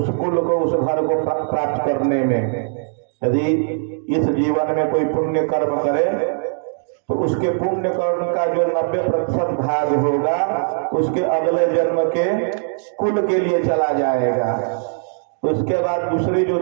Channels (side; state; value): left; silent; digital silence